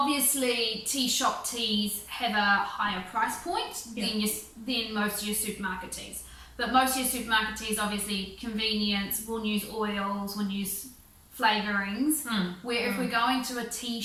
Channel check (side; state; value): both; identical; correlation 1.00